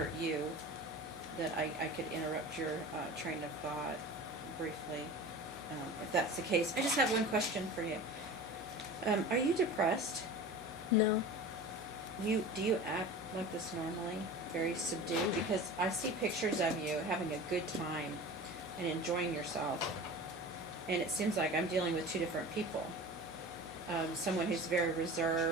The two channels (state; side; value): normal; both; correlation 0.36